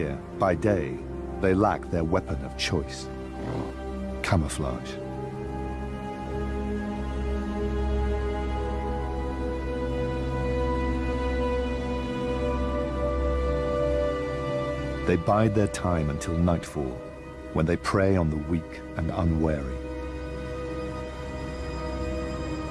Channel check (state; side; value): identical; both; correlation 1.00